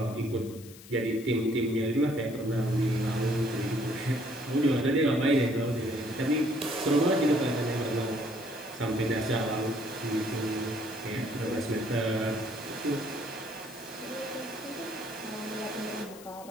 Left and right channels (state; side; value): noise; left; hiss, 19 dB below the sound